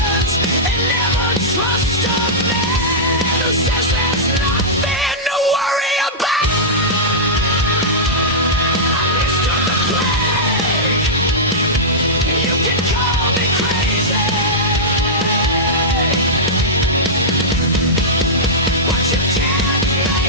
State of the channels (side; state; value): both; normal; correlation -0.12